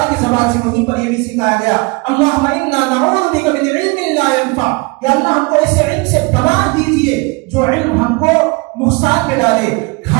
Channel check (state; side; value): quieter; left; 26.8 dB